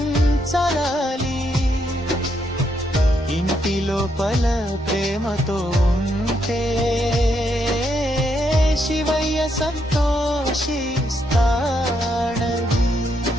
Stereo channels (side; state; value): both; normal; correlation 0.77